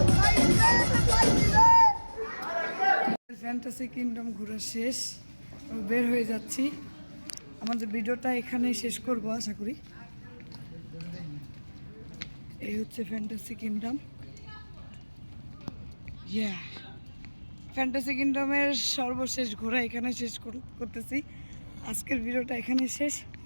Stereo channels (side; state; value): both; inverted; correlation -1.00